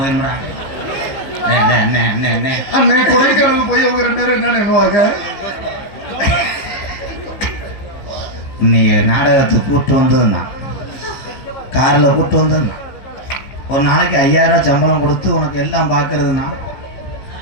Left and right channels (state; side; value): late; right; 15 ms